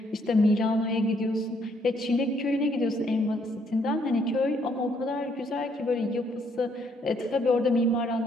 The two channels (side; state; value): both; normal; correlation 0.69